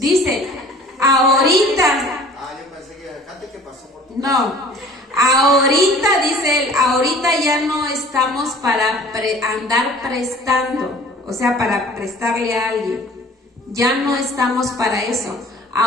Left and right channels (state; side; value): normal; both; correlation 0.49